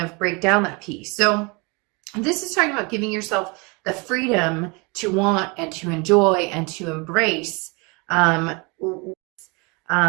break down that peace? So this is talking about giving yourself the freedom to want and to enjoy and to embrace. Cards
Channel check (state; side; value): quieter; left; 29.4 dB